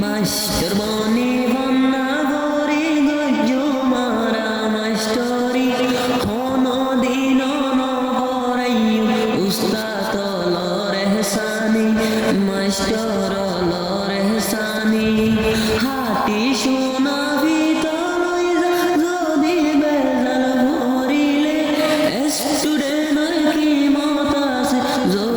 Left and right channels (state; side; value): identical; both; correlation 1.00